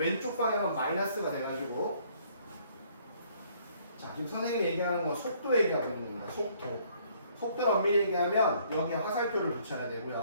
방향은 마이너스가 돼가지고, 자, 지금 선생님이 얘기하는 건 속도 얘기하고 있는 거야. 속도를 엄밀히 얘기하면 여기에 화살표를 붙여야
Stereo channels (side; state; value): both; inverted; correlation -0.63